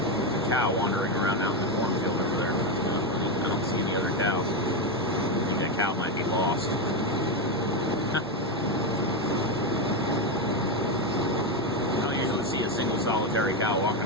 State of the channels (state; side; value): normal; both; correlation 0.10